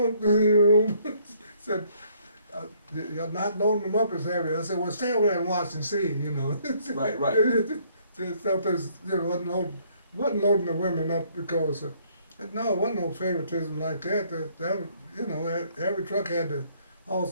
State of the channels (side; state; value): both; inverted; correlation -0.65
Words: you know, said, you're not loading them up as heavy. I said, well, stay over there and watch and see, you know. Right. Sometimes, you know, wasn't loading the women up because, no, it wasn't no favoritism like that. That you know, every truck had to